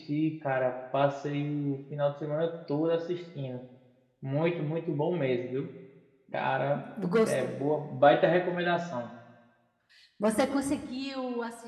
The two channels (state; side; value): identical; both; correlation 1.00